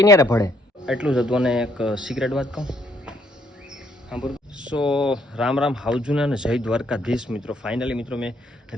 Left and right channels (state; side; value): normal; both; correlation 0.69